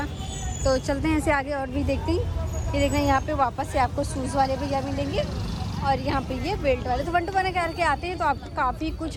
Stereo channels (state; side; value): identical; both; correlation 1.00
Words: तो चलते हैं ऐसे आगे और भी देखते हैं। ये देखना यहाँ पे वापस से आपको शूज़ वाले भैया मिलेंगे। और यहाँ पे ये बेल्ट वाले। तो 1 to 1 करके आते हैं तो आपको काफ़ी